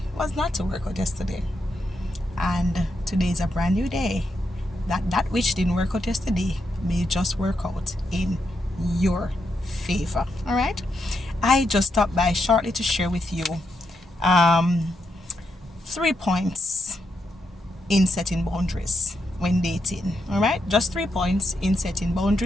was not to work out yesterday. And today is a brand new day. That which didn't work out yesterday may just work out in your favor. All right. I just stopped by shortly to share with you 3 points in setting boundaries when dating. All right, just 3 points in setting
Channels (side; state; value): both; normal; correlation 0.82